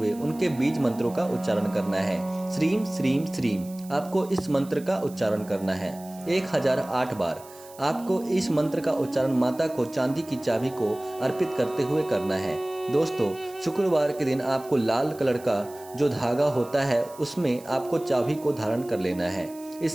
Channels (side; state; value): right; noise; hiss, 21 dB below the sound